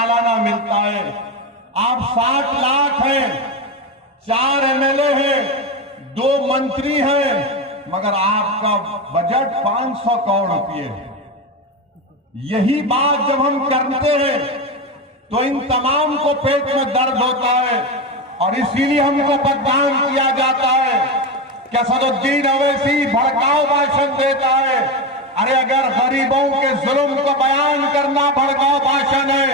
मिलता है। आप 60 लाख हैं, 4 एमएलए हैं, 2 मंत्री हैं, मगर आपका बजट 500 करोड़ रुपये है। यही बात जब हम करते हैं तो इन तमाम को पेट में दर्द होता है और इसीलिए हमको बदनाम किया जाता है कि असदुद्दीन ओवैसी भड़काऊ भाषण देता है। अरे अगर गरीबों के जुल्म को बयान करना भड़काऊ भाषण है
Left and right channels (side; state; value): both; normal; correlation 0.16